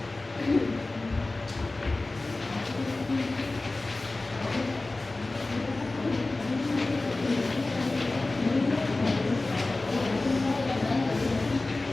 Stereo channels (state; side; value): quieter; right; 3.1 dB